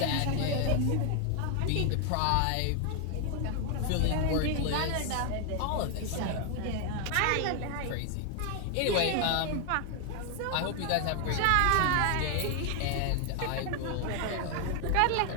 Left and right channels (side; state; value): both; different; correlation 0.00